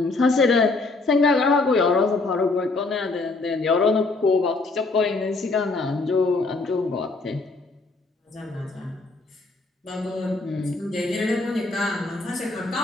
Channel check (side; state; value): right; quieter; 3.5 dB